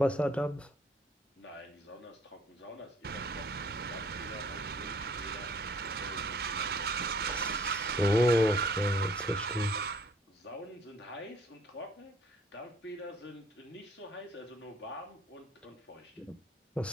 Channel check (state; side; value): normal; both; correlation 0.59